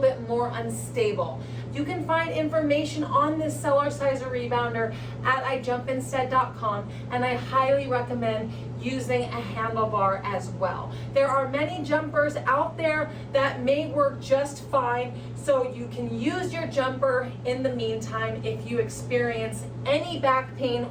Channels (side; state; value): both; identical; correlation 1.00